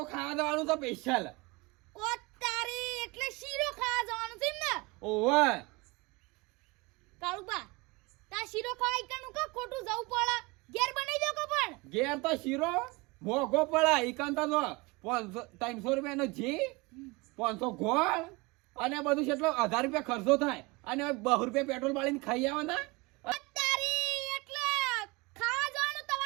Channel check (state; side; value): quieter; left; 25.1 dB